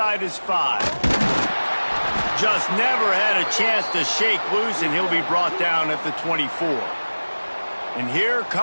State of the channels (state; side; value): inverted; both; correlation -1.00